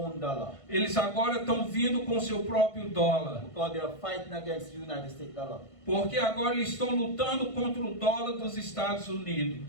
dollar. Eles agora estão vindo com seu próprio dólar. Because they are fighting against the United States dollar. Porque agora eles estão lutando contra o dólar dos Estados Unidos.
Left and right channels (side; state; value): right; late; 1.5 ms